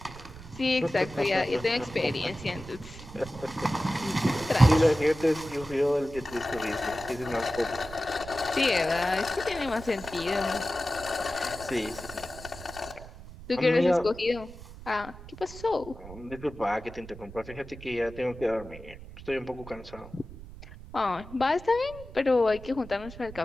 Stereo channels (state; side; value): noise; right; rumble, 15 dB below the sound